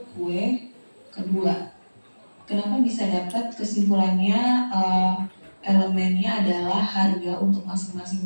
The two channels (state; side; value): inverted; both; correlation -1.00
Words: kue kedua. Kenapa bisa dapat kesimpulannya elemennya adalah harga untuk masing-masing